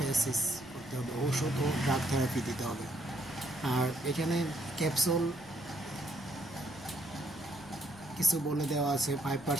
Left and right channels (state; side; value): noise; left; rumble, 24 dB below the sound